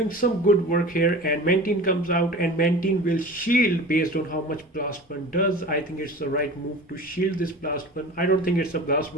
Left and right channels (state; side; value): normal; both; correlation 0.37